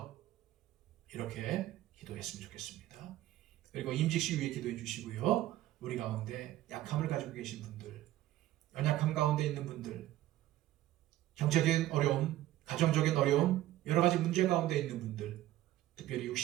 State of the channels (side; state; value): left; quieter; 14.6 dB